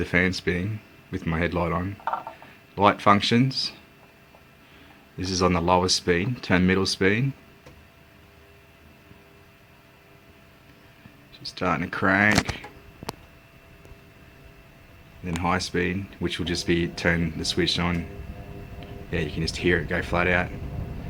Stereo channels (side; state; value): both; identical; correlation 1.00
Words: fan spinning with my headlight on. Light functions. This is on the lowest speed, turn middle speed. Just starting to crank. And then high speed, which will just be turn the switch on. Yeah, you can just hear it go flat out.